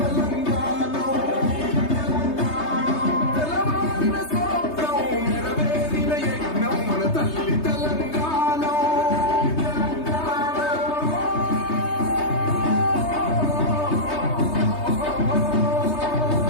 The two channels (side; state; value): right; late; 3.3 ms